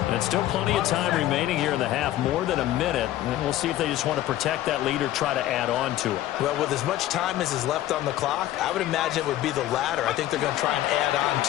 And still plenty of time remaining here in the half, more than a minute. And we'll see if they just want to protect that lead or try to add on to it. Well, with as much time as is left on the clock, I would imagine it would be the latter. I think they're going to try and add on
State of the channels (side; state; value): right; quieter; 13.9 dB